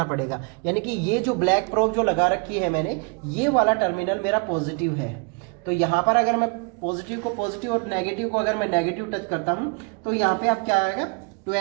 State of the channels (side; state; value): left; quieter; 32.1 dB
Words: पड़ेगा। यानी कि ये जो ब्लैक प्रोब जो लगा रखी है मैंने, ये वाला टर्मिनल मेरा पॉजिटिव है, तो यहाँ पर अगर मैं पॉजिटिव को पॉजिटिव और नेगेटिव को अगर मैं नेगेटिव टच करता हूँ तो यहाँ पे आप क्या आएगा,